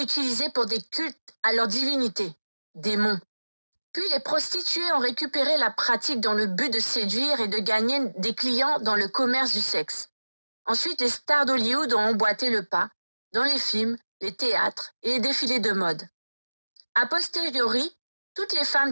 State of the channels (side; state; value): both; inverted; correlation -1.00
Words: utilisé pour des cultes à leur divinité, démons. Puis les prostituées ont récupéré la pratique dans le but de séduire et de gagner des clients dans le commerce du sexe. Ensuite, les stars d'Hollywood ont emboîté le pas dans les films, les théâtres et les défilés de mode. A posteriori, toutes les